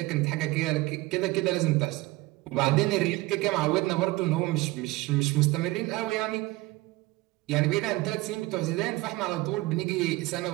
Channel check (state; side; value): quieter; left; 20.1 dB